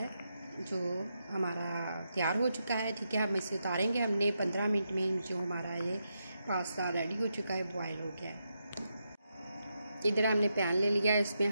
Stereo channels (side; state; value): both; inverted; correlation -0.84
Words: जो हमारा तैयार हो चुका है, ठीक है। हम इसे उतारेंगे। हमने 15 मिनट में जो हमारा ये पास्ता रेडी हो चुका है, बॉईल हो गया है। इधर हमने पैन ले लिया, इसमें